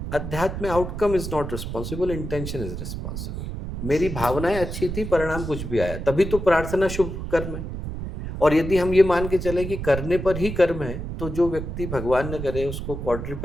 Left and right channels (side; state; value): right; noise; rumble, 6 dB below the sound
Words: अध्यात्म में outcome is not responsible, intention is responsible. मेरी भावनाएं अच्छी थी, परिणाम कुछ भी आया, तभी तो प्रार्थना शुभ कर्म है। और यदि हम ये मान के चले कि करने पर ही कर्म है, तो जो व्यक्ति भगवान न करे उसको